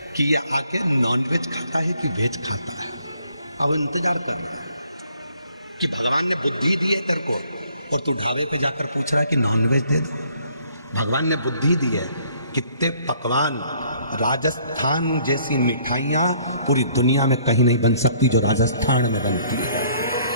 कि ये आके नॉन वेज खाता है कि वेज खाता है। अब इंतजार कर रहा है कि भगवान ने बुद्धि दी है तेरे को, और तू ढाबे पे जाकर पूछ रहा है कि नॉन वेज दे दो। भगवान ने बुद्धि दी है। कितने पकवान, राजस्थान जैसी मिठाइयां पूरी दुनिया में कहीं नहीं बन सकती जो राजस्थान में बनती है।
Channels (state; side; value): inverted; both; correlation -0.62